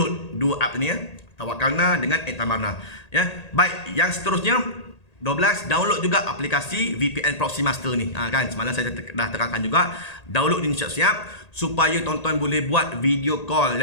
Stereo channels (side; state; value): right; late; 1.8 ms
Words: dua app ni ya, Tawakkalna dengan Iktamarna ya. Baik, yang seterusnya 12, download juga aplikasi VPN Proxy Master ni. Kan semalam saya dah terangkan juga, download ni siap-siap supaya tuan-tuan boleh buat video call